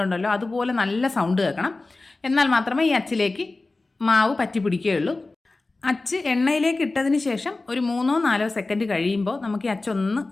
ഉണ്ടല്ലോ, അതുപോലെ നല്ല സൗണ്ട് കേൾക്കണം. എന്നാൽ മാത്രമേ ഈ അച്ചിലേക്ക് മാവ് പറ്റി പിടിക്കുകയുള്ളൂ. അച്ച് എണ്ണയിലേക്ക് ഇട്ടതിന് ശേഷം ഒരു 3-4 സെക്കൻഡ് കഴിയുമ്പോൾ നമുക്ക് ഈ അച്ചൊന്ന്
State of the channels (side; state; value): right; quieter; 3.3 dB